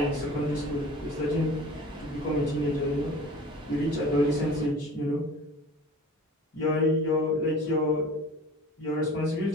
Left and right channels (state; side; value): normal; both; correlation 0.41